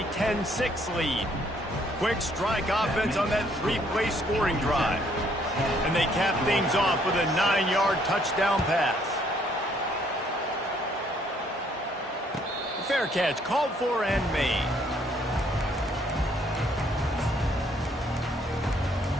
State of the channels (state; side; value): normal; both; correlation 0.66